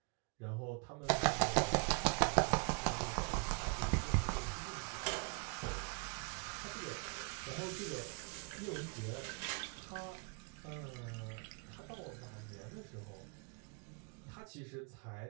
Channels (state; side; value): quieter; left; 36.1 dB